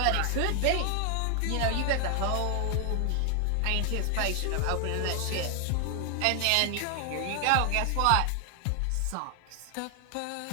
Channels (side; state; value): both; different; correlation 0.00